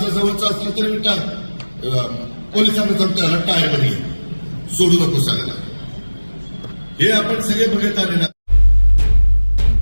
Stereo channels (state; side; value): inverted; both; correlation -1.00